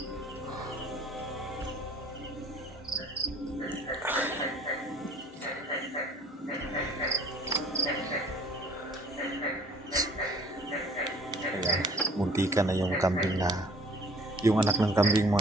Ayan, muntika na yung kambing yung anak ng kambing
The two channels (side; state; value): both; normal; correlation 0.54